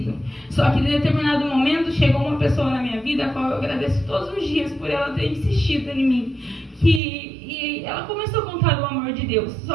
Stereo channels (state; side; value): drops out; left; at 7.0 s